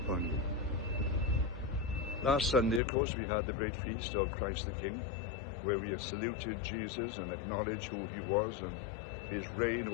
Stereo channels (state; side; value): drops out; right; at 2.8 s